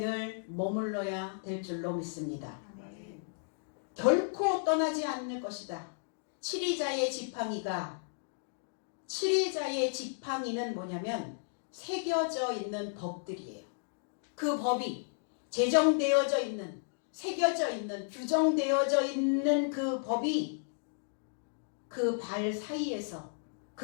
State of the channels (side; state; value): right; silent; digital silence